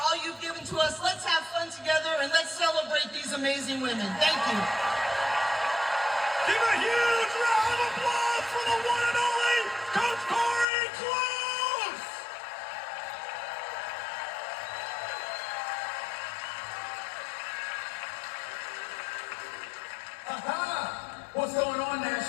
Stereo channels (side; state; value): right; drops out; at 10.7 s